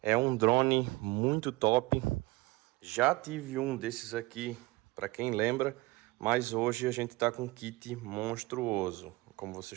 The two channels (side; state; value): left; quieter; 21.5 dB